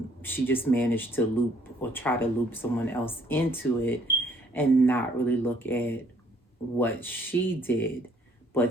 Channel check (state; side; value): normal; both; correlation 0.63